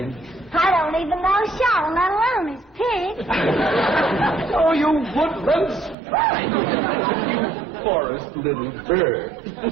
I don't even know Shaw, let alone his pig. Oh, you woodland sprite! You forest little bird.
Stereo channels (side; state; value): left; drops out; at 6.0 s